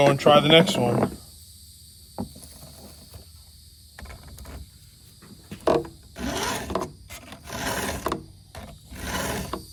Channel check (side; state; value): both; identical; correlation 1.00